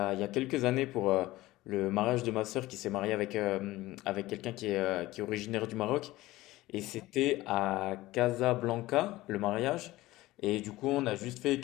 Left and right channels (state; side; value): quieter; right; 17.8 dB